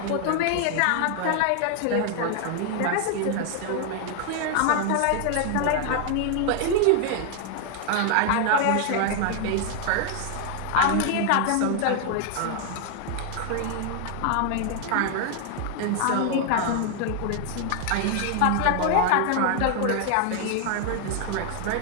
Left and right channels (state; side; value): different; both; correlation 0.00